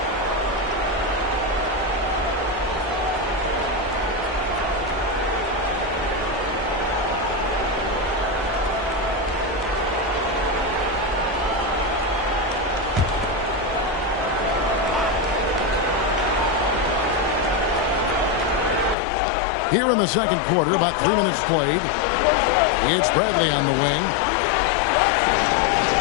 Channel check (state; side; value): drops out; right; at 18.9 s